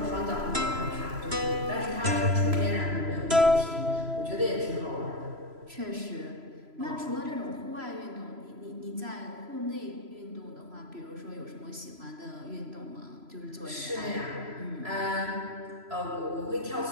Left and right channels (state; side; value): late; left; 3.0 ms